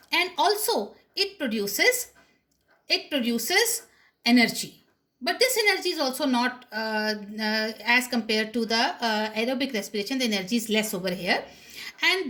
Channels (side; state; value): both; identical; correlation 1.00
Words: and also it produces energy. But this energy is also not as compared to the aerobic respiration, the energy is less over here.